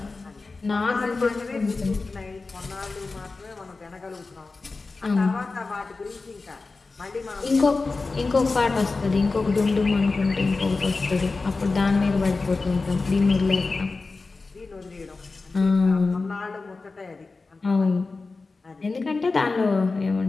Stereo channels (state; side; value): quieter; right; 3.8 dB